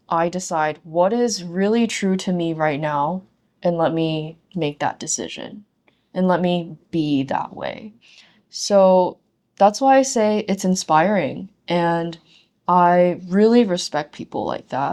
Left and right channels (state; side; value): identical; both; correlation 1.00